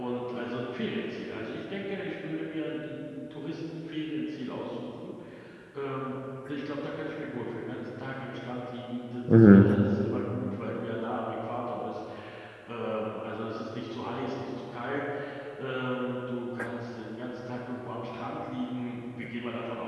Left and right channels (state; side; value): identical; both; correlation 1.00